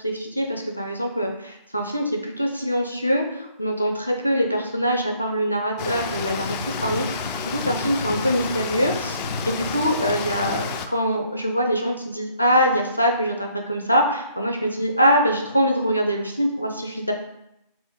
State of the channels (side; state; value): both; inverted; correlation -0.66